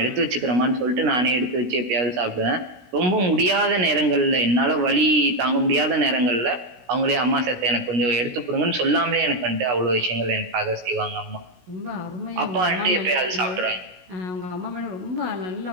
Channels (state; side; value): late; left; 16 ms